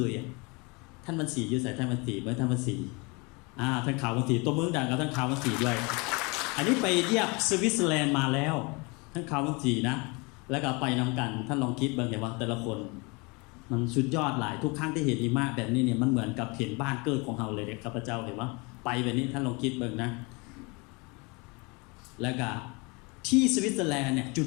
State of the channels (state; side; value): quieter; right; 28.5 dB